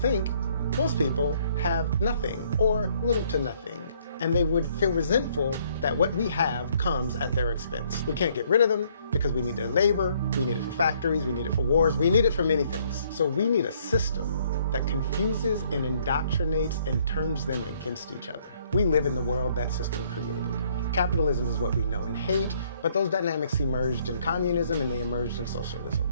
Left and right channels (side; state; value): both; inverted; correlation -0.65